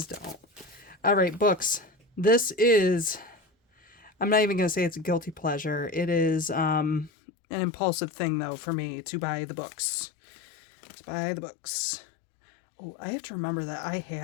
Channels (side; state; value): right; drops out; at 7.1 s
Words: don't. All right, books. This is, I'm not even going to say it's a guilty pleasure. It is an impulsive thing, though, for me to buy the books. To buy the books. Oh, I have to remember that I